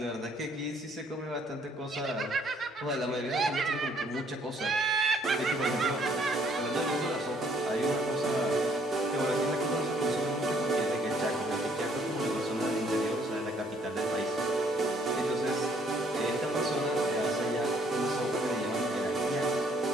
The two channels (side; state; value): both; normal; correlation 0.64